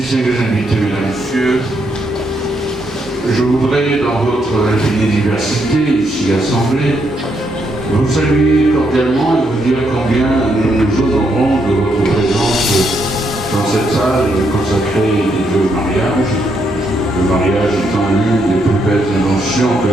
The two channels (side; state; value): both; normal; correlation 0.77